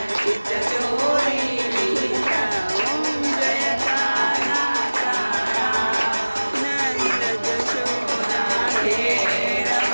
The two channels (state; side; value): inverted; both; correlation -1.00